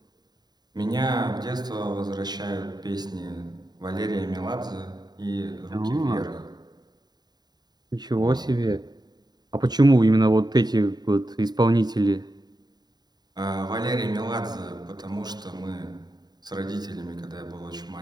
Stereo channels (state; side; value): late; left; 0.20 ms